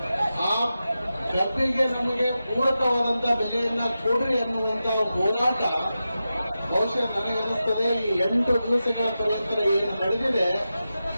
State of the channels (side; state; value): both; inverted; correlation -0.92